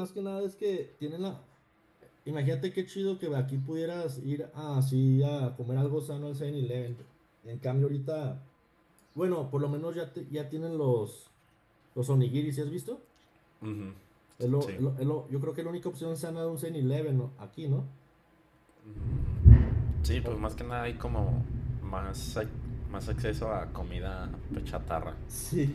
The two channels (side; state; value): both; identical; correlation 1.00